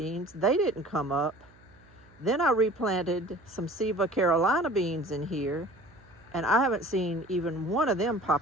They didn't come up. Then I replanted some Siva Carolina beans in here, and I haven't seen even one of them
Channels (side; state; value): right; noise; hum, 28 dB below the sound